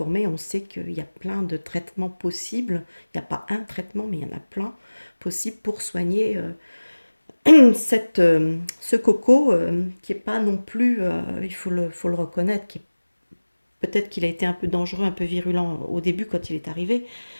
on sait qu'il y a plein de traitements possibles. Il n'y a pas un traitement, mais il y en a plein possibles pour soigner ce coco qui est pas non plus, faut le reconnaître, peut-être qu'il a été un peu dangereux, un peu virulent au début quand il est arrivé,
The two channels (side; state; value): both; inverted; correlation -1.00